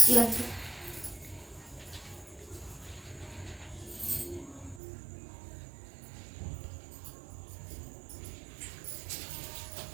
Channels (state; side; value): drops out; left; at 4.8 s